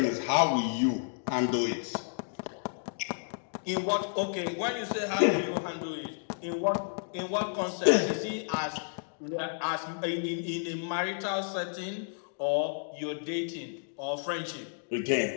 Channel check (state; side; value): silent; right; digital silence